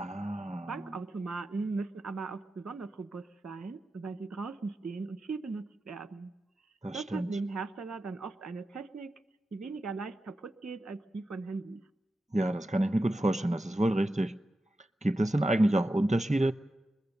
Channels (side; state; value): both; normal; correlation 0.91